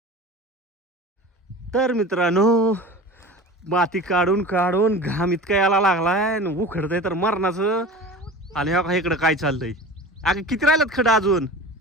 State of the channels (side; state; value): both; normal; correlation 0.35